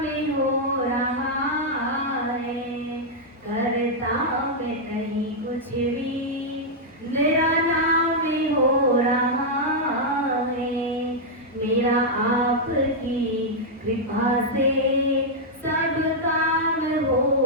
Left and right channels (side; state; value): both; normal; correlation -0.05